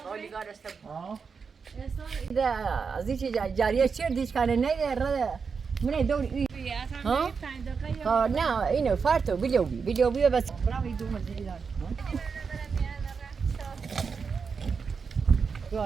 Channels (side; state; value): left; quieter; 5.5 dB